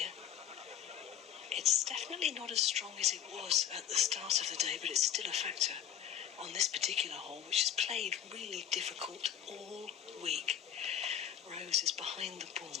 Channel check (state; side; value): quieter; right; 10.0 dB